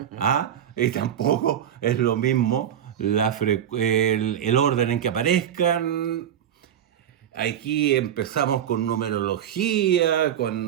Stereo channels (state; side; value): quieter; left; 9.9 dB